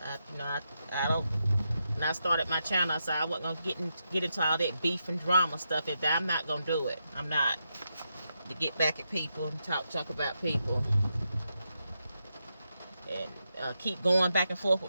I don't. When I started my channel, I said I wasn't gonna get into all that beef and drama stuff. I'm not gonna do it. I'm not, to get back at people and talk about people and keep going back and forth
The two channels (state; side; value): inverted; both; correlation -0.84